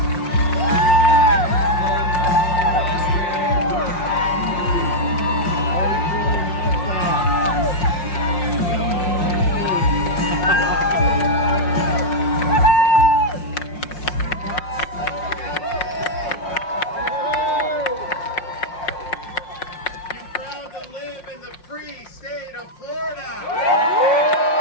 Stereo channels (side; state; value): right; late; 5.6 ms